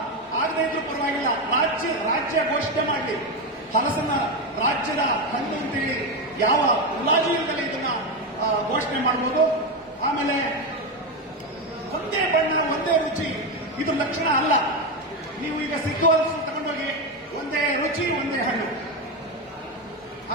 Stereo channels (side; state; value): both; normal; correlation 0.12